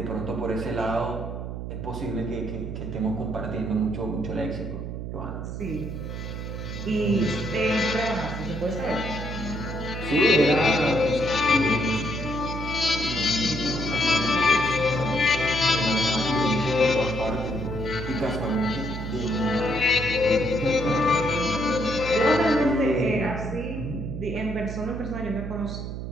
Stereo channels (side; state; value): right; noise; hum, 6 dB below the sound